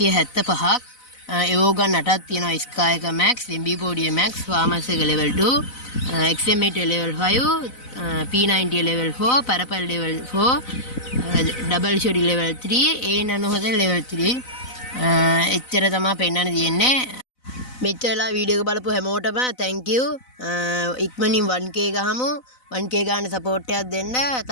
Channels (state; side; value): late; right; 4.0 ms